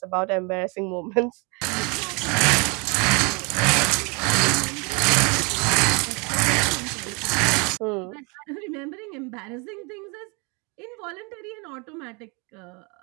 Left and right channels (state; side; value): quieter; left; 30.9 dB